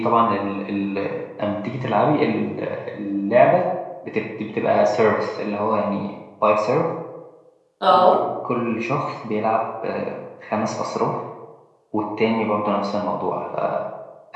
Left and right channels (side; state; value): both; identical; correlation 1.00